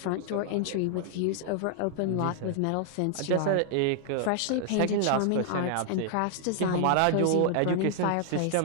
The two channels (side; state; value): both; different; correlation 0.00